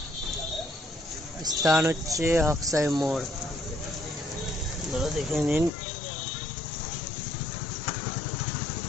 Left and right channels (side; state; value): right; drops out; at 5.7 s